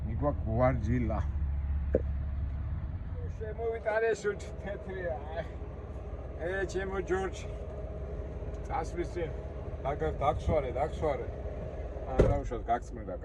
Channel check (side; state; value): both; identical; correlation 1.00